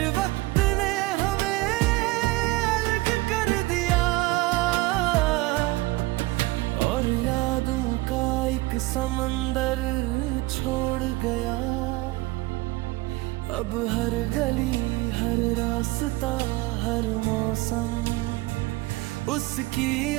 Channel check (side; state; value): left; quieter; 20.6 dB